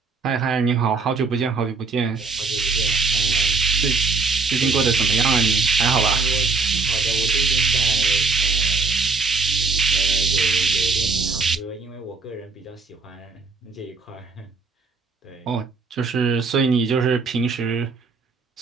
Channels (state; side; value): quieter; left; 4.4 dB